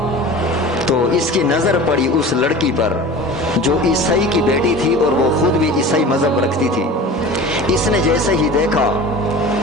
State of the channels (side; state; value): both; normal; correlation 0.37